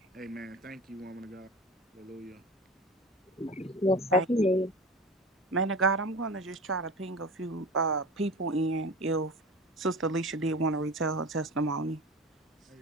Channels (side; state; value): both; normal; correlation 0.33